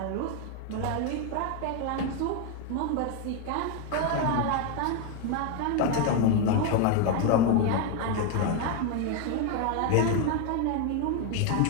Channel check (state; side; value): different; both; correlation 0.01